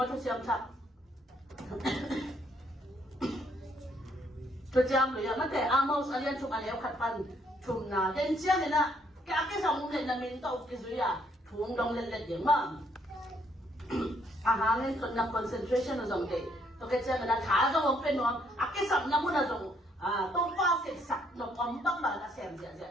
tu siapa tak tu siapa lima macam Amos kalian cuma ni kat pan cuma dan siapa ni nak kakek sama ni nak minta ukisuya tuang dong lelet dia mang ahangin ko na concentration na zong day to kaya na kaza wong penwang akisam na mo na zong to pa sak no pambang ba na sem ja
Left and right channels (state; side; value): normal; both; correlation 0.70